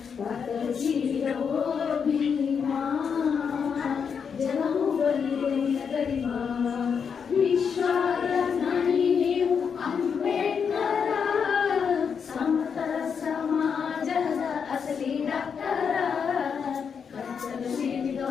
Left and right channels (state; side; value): quieter; right; 6.6 dB